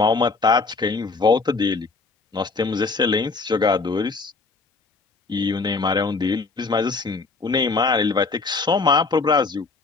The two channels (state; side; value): quieter; right; 4.1 dB